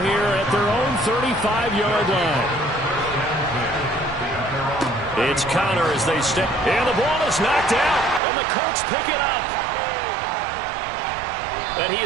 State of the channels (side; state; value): left; drops out; at 8.2 s